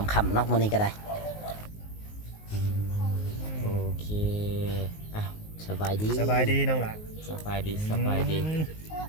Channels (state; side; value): late; right; 19 ms